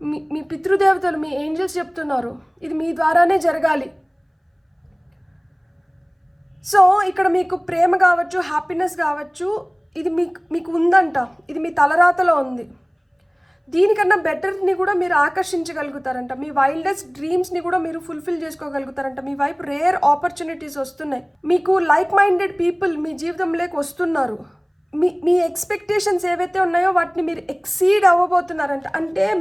మీ పితృదేవతలు, మీ ఏంజల్స్ చెప్తున్నారు ఇది మీ ద్వారానే జరగాలి. సో ఇక్కడ మీకు ప్రేమ కావచ్చు, హ్యాపీనెస్ కావచ్చు, ఇది మీకు ఉందంట. ఇది మీ తలరాతలో ఉంది. దీనికన్నా బెటర్ని కూడా మీరు ఆకర్షించగలుగుతారంట. మీ వైల్డెస్ట్ డ్రీమ్స్ని కూడా మీరు ఫుల్ఫిల్ చేసుకోగలుగుతారంట. మీ వైపు రేర్ ఆపర్చునిటీస్ వస్తున్నాయి. మీకు లైక్ మైండెడ్ పీపుల్ మీ జీవితంలోకి వస్తున్నారు. మీ ఎక్స్పెక్టేషన్స్ ఏవైతే ఉన్నాయో వాటిని మీరు ఎక్సీడ్ అవ్వబోతున్నారంట. అంటే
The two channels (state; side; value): identical; both; correlation 1.00